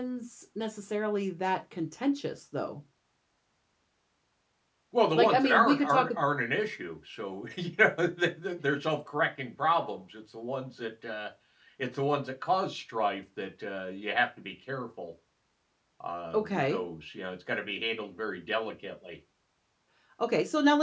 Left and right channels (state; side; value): identical; both; correlation 1.00